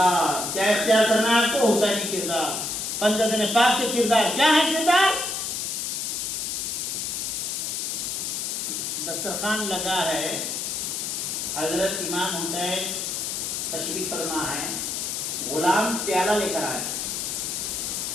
کیا اختیار کرنا ہے آپ کو؟ حسینی کردار. پنجتن پاک کے کردار کیا ہے؟ کردار دسترخوان لگا ہے، حضرت امام حسین تشریف فرما ہے، غلام پیالہ لے کر آیا.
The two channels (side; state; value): left; noise; hiss, 2 dB below the sound